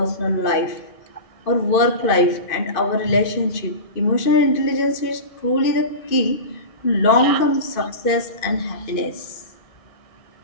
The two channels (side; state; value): right; late; 2.5 ms